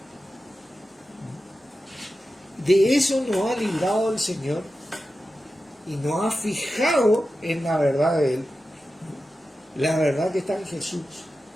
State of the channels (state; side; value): normal; both; correlation 0.92